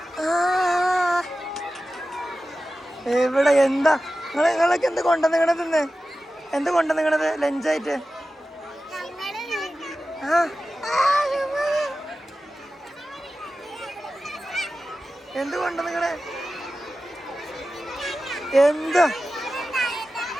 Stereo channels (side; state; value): both; normal; correlation 0.94